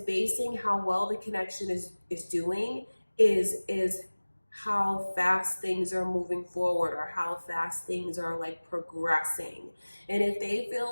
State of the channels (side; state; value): both; inverted; correlation -1.00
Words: how well the connection is doing is how fast things are moving forward, or how fast things are like progressing. And if they feel